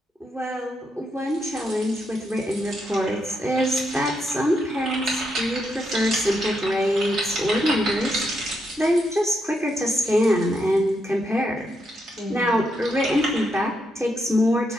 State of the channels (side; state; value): both; normal; correlation 0.81